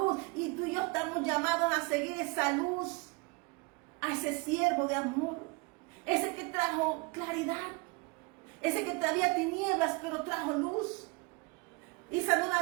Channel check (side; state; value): left; quieter; 28.4 dB